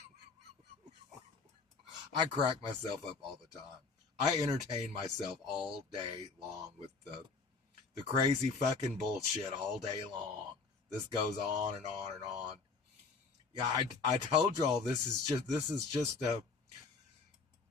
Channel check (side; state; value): right; quieter; 4.5 dB